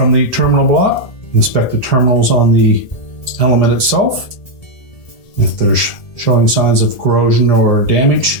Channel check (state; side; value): late; right; 1.8 ms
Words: the terminal block, inspect the terminals on the element itself. If there's showing signs of corrosion or